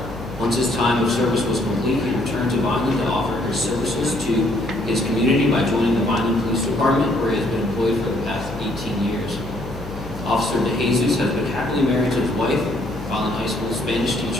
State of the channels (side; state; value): left; noise; hum, 13 dB below the sound